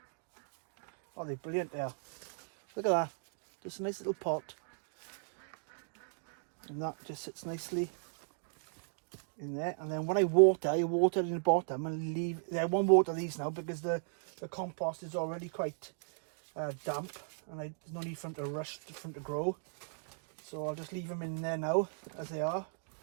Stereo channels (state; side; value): silent; left; digital silence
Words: Oh, they're brilliant there. Look at that. Just a nice little pot. And that just sits nicely in there. And then when I water it in the bottom and leave. I won't water these now because the compost is already quite damp. And there's no need for them to rush, for them to grow. So I'll just leave them in there now as they are.